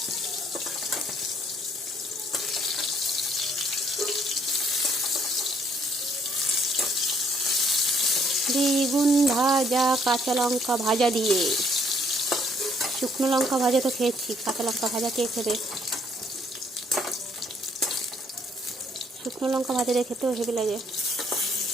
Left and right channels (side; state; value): both; normal; correlation 0.65